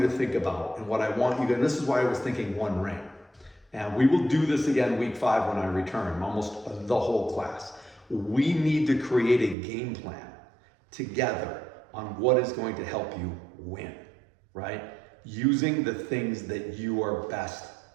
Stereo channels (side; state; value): left; drops out; at 9.6 s